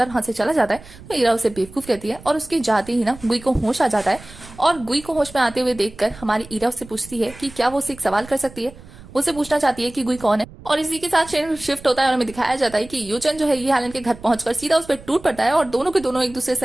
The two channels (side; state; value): right; noise; rumble, 19 dB below the sound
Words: वहां से चला जाता है। तो ईरा उसे बेवकूफ कहती है और उसके जाते ही ना गुई को होश आ जाता है। और गुई को होश में आते हुए देखकर हमारी ईरा उससे पूछती है कि क्या वो उसे एक सवाल कर सकती है। वो उसे पूछना चाहती है कि गुई कौन है। और इसी के साथ शिफ्ट होता है और हमें दिखाया जाता है कि यूचन जो है ये हेलन के घर पहुंचकर सीधा उस पर टूट पड़ता है और दोनों के दोनों एक दूसरे